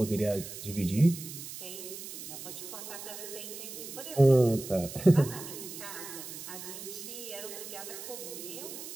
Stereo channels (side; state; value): right; noise; hiss, 10 dB below the sound